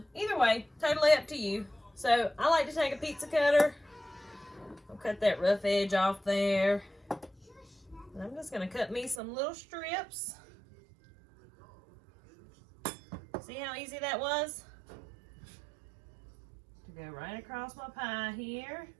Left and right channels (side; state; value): left; drops out; at 9.2 s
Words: way, totally up to you. So I like to take a pizza cutter. I'll cut that rough edge off there. And I'm just going to cut me some little strips. See how easy that was? To go right across my pie here.